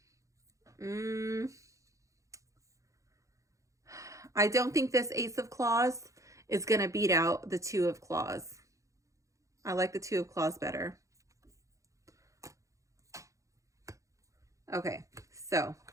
I don't think this Ace of Claws is going to beat out the Two of Claws. I like the Two of Claws better. Okay, so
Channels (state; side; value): late; left; 0.15 ms